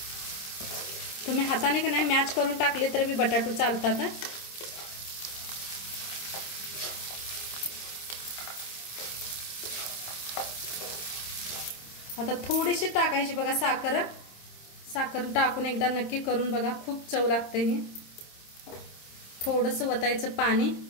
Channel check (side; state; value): right; late; 26 ms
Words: तुम्ही हाताने का नाही मॅच करून टाकले तर बी बटाटो चालतात. आता थोडीशी टाकायची बघा साखर. साखर टाकून एकदा नक्की करून बघा, खूप चव लागते ही. थोडंसं वतायचं पाणी,